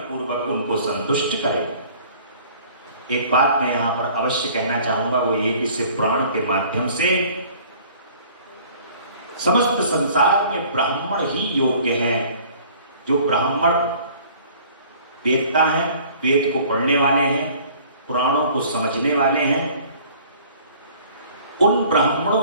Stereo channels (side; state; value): both; inverted; correlation -0.52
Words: पूर्वक उनको संतुष्ट करें। एक बात मैं यहां पर अवश्य कहना चाहूंगा, वो ये कि इस प्राण के माध्यम से समस्त संसार में ब्राह्मण ही योग्य हैं। जो ब्राह्मण वेदता है, वेद को पढ़ने वाले हैं, पुराणों को समझने वाले हैं, उन ब्राह्मणों